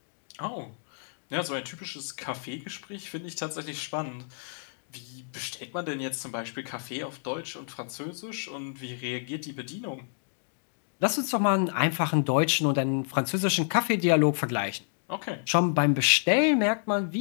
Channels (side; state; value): right; silent; digital silence